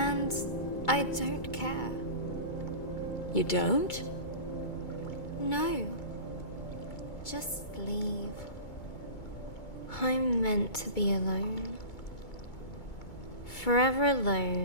I don't care. You don't? No. Just leave. I'm meant to be alone. Forever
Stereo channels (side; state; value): right; late; 2.2 ms